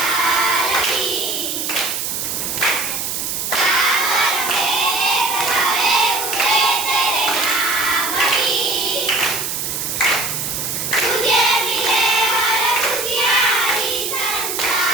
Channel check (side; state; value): right; noise; hiss, 3 dB below the sound